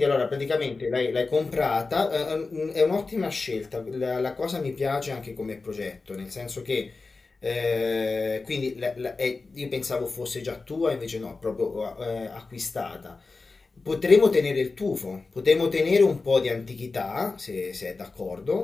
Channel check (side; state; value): right; quieter; 3.9 dB